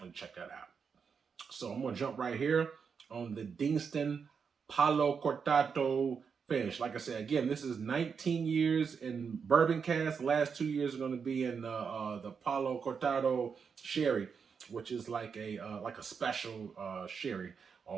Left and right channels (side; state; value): left; quieter; 6.1 dB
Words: check that out. So I'm gonna jump right here on the Deanston Palo Cortado finish. Like I said, again, this is 19 years in bourbon cask. The last 2 years are going to be in the Palo Cortado sherry, which is like a special sherry